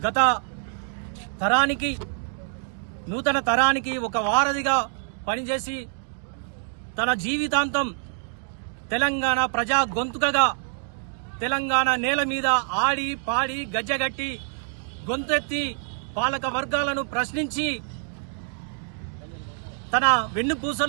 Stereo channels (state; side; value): silent; left; 61 dB below the other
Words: గత తరానికి నూతన తరానికి ఒక వారధిగా పనిచేసి తన జీవితాంతం తెలంగాణ ప్రజా గొంతుకగా తెలంగాణ నేల మీద ఆడి పాడి గజ్జగట్టి గొంతెత్తి పాలక వర్గాలను ప్రశ్నించి తన